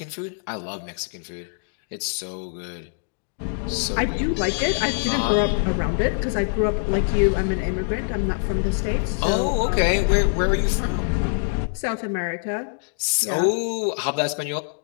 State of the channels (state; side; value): silent; right; 63 dB below the other